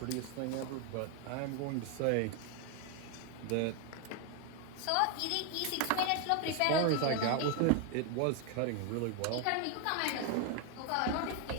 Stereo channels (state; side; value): different; both; correlation 0.01